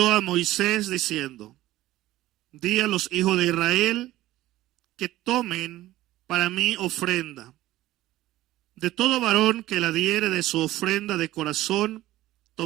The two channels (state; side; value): quieter; left; 15.7 dB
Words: a Moisés diciendo, di a los hijos de Israel que tomen para mí ofrenda. De todo varón que la diere de su ofrenda de corazón,